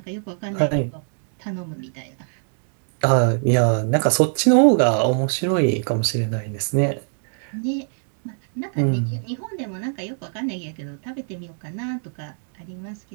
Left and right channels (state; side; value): silent; left; 63 dB below the other